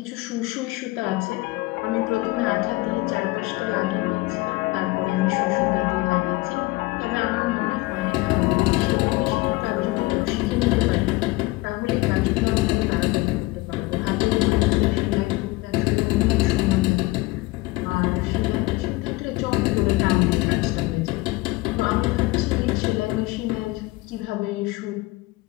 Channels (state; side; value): quieter; right; 21.4 dB